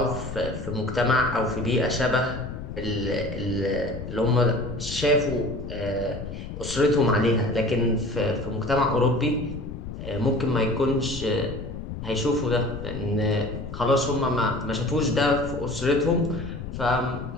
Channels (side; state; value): left; noise; rumble, 9 dB below the sound